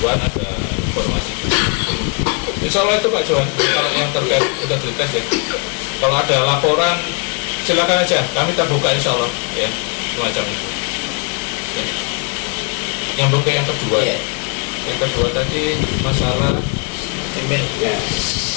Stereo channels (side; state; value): right; quieter; 34.5 dB